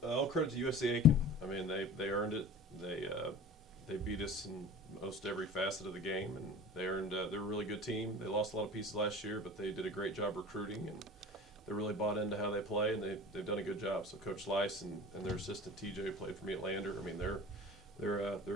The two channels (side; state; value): both; normal; correlation 0.39